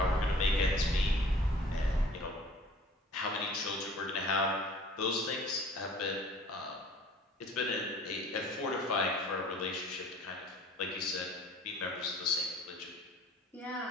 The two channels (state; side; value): normal; both; correlation 0.49